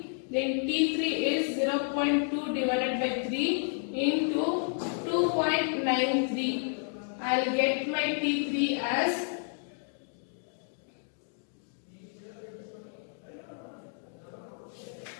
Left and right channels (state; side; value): silent; right; 57 dB below the other